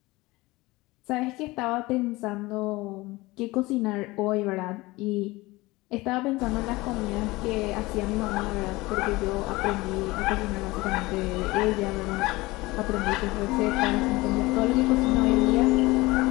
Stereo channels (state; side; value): quieter; right; 21.1 dB